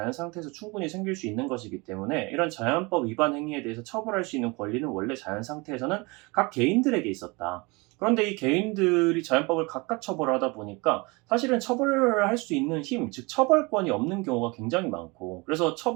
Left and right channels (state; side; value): quieter; left; 26.6 dB